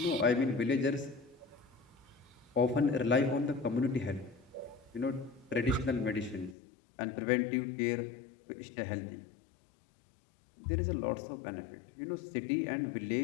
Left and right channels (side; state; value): right; drops out; at 6.6 s